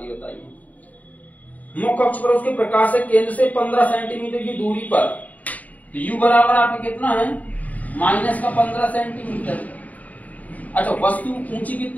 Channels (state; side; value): late; right; 0.073 ms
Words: बताई है। मुख्य अक्ष पर उसके प्रकाशक केंद्र से 15 सेंटीमीटर की दूरी पर, तो u बराबर आपका कितना है, माइनस का 15 सेंटीमीटर। अच्छा, वस्तु ऊंची